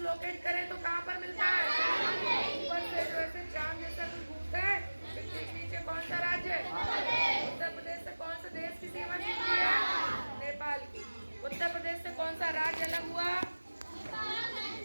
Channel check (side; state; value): both; inverted; correlation -1.00